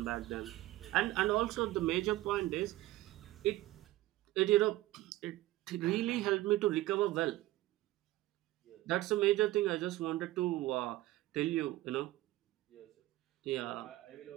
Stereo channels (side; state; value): left; quieter; 16.8 dB